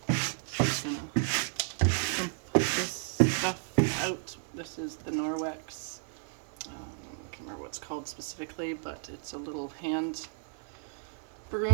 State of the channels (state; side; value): silent; left; 56 dB below the other